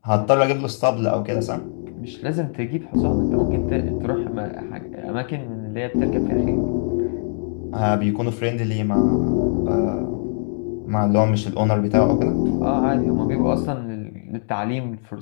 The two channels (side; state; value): right; silent; digital silence